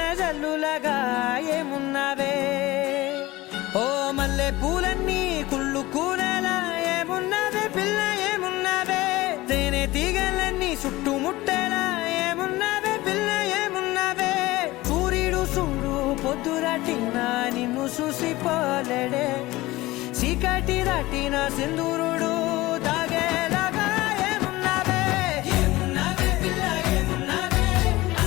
జల్లులగా ఏమున్నావే ఓ మల్లె పూలన్నీ కుళ్ళు కూరేలా ఏమున్నావే పిల్ల ఏమున్నావే తేనె తీగలన్నీ చుట్టుముట్టేలా ఏమున్నావే పిల్ల ఏమున్నావే సూర్యుడు చూడు పొద్దురాటిన నిన్ను చూసిపోలేడే చీకటి దాటిన సింధూరుడు తాగేలాగా ఏమున్నావే ఏమున్నావే పిల్ల ఏమున్నావే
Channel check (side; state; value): right; quieter; 19.1 dB